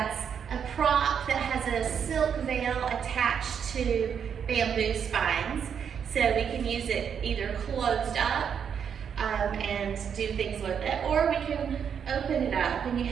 a prop that has a silk veil attached to bamboo spines. So we can use it either closed up and do things with it, or we can open it up and you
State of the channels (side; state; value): left; quieter; 7.6 dB